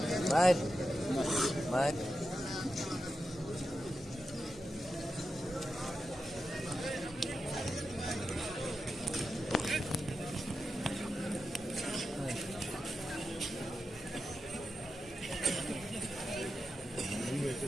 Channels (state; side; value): normal; both; correlation 0.89